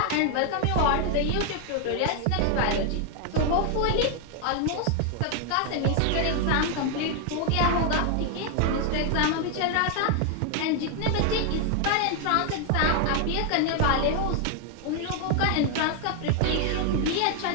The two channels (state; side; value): different; both; correlation 0.00